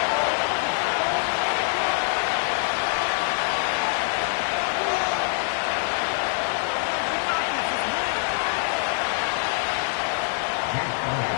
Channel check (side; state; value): right; silent; 62 dB below the other